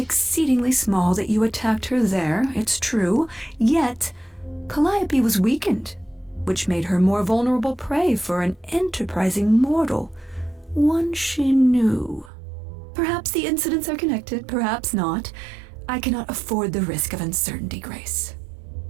small that you attacked her there, it's true. Yet, Calliope was weakened, which made her more vulnerable prey for an enterprising mortal. One she knew. Perhaps the incidents are connected, perhaps not. I cannot afford the risk of uncertainty, Grace.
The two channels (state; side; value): drops out; left; at 12.3 s